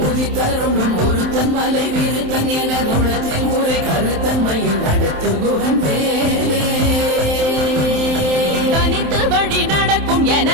உதித்தருணும் ஒருத்தன் மலை விருத்தன் என தோளத்தில் உரை கருத்தன்மையில் நடத்து குகன் வேலே தனித்து வழி நடக்கும்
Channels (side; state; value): left; late; 27 ms